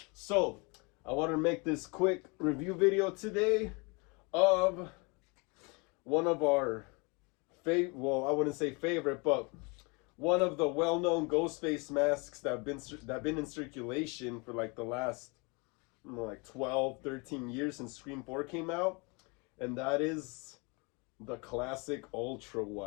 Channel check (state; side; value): quieter; right; 29.9 dB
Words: So, I want to make this quick review video today of one of our well, I wouldn't say favorite, but one of the well-known Ghostface masks that have been in circulation for like the last like 12, 13 years since Scream 4 came out, and that is the classic Ultra